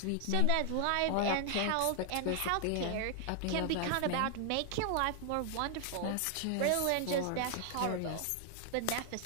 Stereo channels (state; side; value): different; both; correlation 0.00